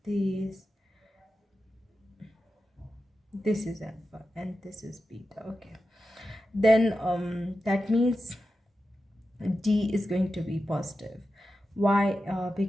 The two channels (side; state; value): both; normal; correlation 0.91